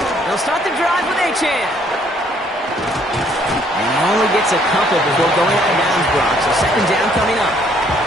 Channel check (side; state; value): both; normal; correlation 0.64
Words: They'll start the drive with Achane. And he only gets a couple before going out of bounds, Brock. So 2nd down coming up.